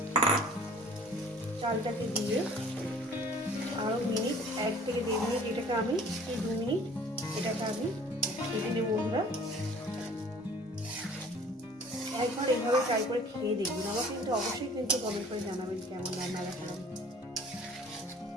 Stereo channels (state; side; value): normal; both; correlation 0.50